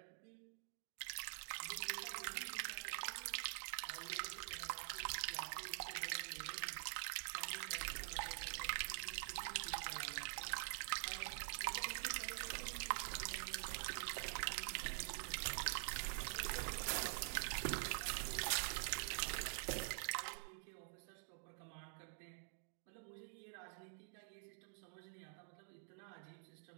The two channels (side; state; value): left; silent; digital silence